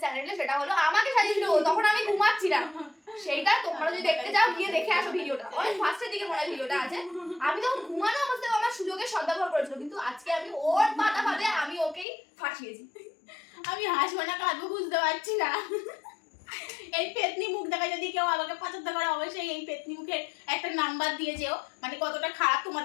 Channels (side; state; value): right; drops out; at 12.1 s